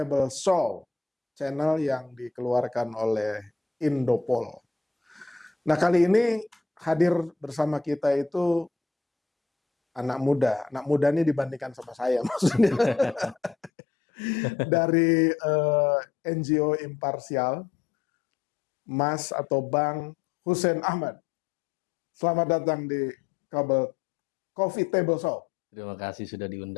Show, channel yang dikeluarkan oleh Indopol. Nah, kali ini hadir bersama kita itu anak muda. Anak muda ini dibandingkan sama saya maksudnya. Dari NGO Imparsial, Mas atau Bang Hussein Ahmad. Selamat datang di Coffee Table Show. Terima kasih sudah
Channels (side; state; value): right; drops out; at 13.7 s